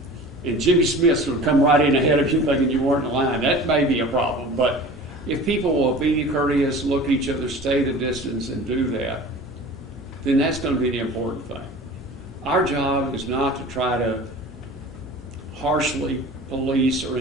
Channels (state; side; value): normal; both; correlation 0.40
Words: and Jimmy Smith's going to come right in ahead of you thinking you weren't in line. That may be a problem. But if people will be courteous, look at each other, stay the distance, and do that, then that's going to be the important thing. Our job is not to try to harshly police or